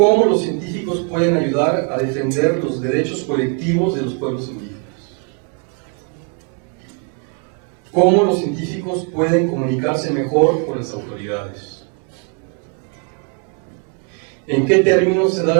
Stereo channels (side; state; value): left; quieter; 35.0 dB